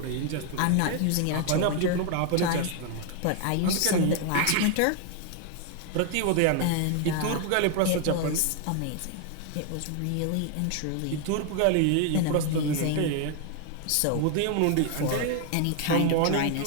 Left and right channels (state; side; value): different; both; correlation 0.00